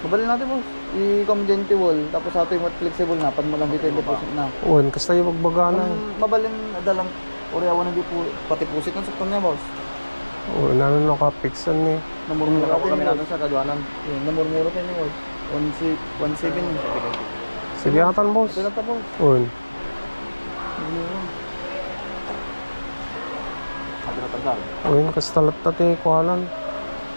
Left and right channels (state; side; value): inverted; both; correlation -1.00